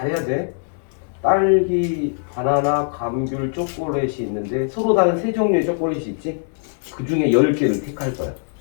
돼. 딸기, 바나나, 감귤, 초콜릿이 있는데 서로 다른 세 종류의 초콜릿이 있지? 그 중에 10개를 택할 거야.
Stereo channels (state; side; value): silent; right; 63 dB below the other